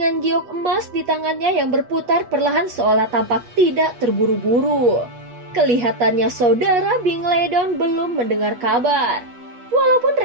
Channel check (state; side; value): late; left; 8.2 ms